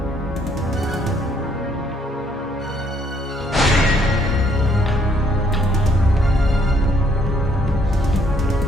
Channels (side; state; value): both; normal; correlation 0.66